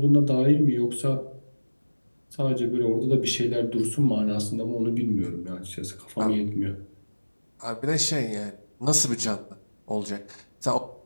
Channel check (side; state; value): both; inverted; correlation -1.00